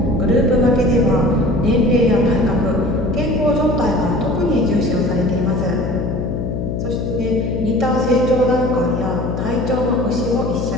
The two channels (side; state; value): left; noise; hum, 3 dB below the sound